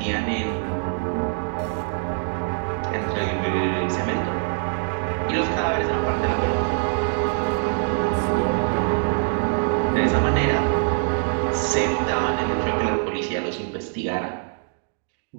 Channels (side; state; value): left; silent; 62 dB below the other